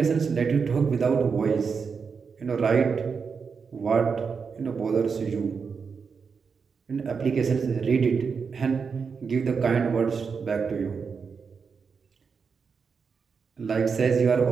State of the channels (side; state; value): left; quieter; 5.6 dB